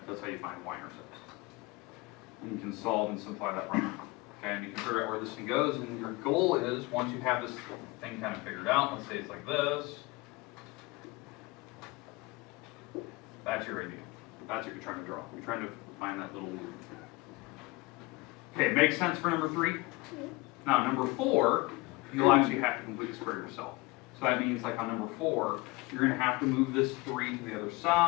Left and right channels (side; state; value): right; quieter; 23.1 dB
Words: how you find y-intercepts. And you can solve and simplify that problem. Okay, and you can figure out where this thing goes, and your goal is, once you have this thing kind of figured out, let's say it's like this, that's your idea. That's what you're trying to draw. You're trying to find that little loop. Okay, makes sense for number 3? Now, number 4, you'll actually have to complete the square yourself. So that means, like on number 4, you're going to have to move this 3 to the other